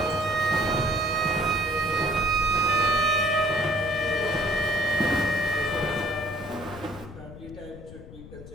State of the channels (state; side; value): noise; left; rumble, 15 dB below the sound